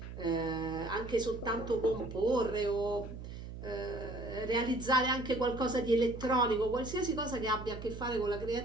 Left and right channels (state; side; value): noise; right; hum, 10 dB below the sound